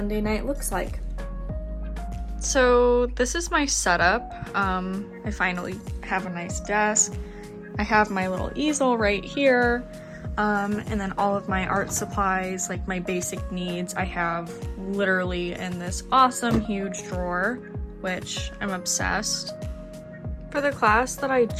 night looks like. So this is my setup. I finally have a nice desk. I have my little easel right here, and then all of my art supplies, like my basic needs, I have literally in this awesome huge drawer, which I'm obsessed. For the class that I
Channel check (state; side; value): identical; both; correlation 1.00